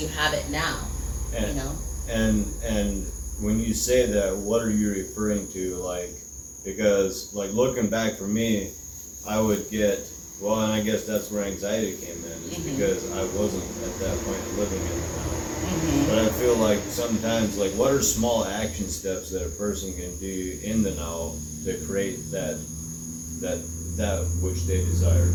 have it now, And, you know? and when you say that, what are you referring to? Like, because like looking back for me, I would get, well, and I guess that's where anxiety came in, is because I wasn't at that point living in the now. But I feel like sometimes, like, what are small action steps that a person can do in the now to create that which they desire?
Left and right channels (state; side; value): identical; both; correlation 1.00